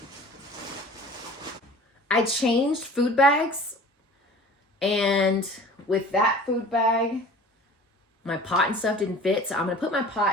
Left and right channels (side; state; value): both; normal; correlation 0.43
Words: I changed food bags, and with that food bag, my pot and stuff didn't fit, so I'm gonna put my